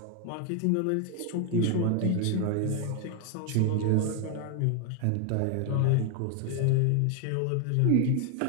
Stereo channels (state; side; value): different; both; correlation 0.01